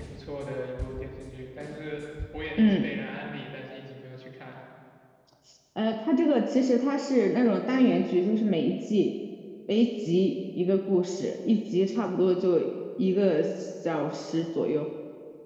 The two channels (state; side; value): identical; both; correlation 1.00